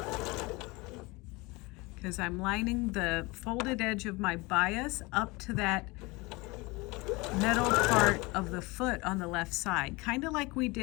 because I'm lining the folded edge of my bias up to that metal part of the foot on the left side, kind of like we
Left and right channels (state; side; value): quieter; right; 24.3 dB